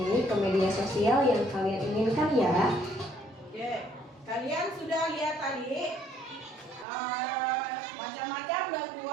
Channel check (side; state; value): left; drops out; at 6.9 s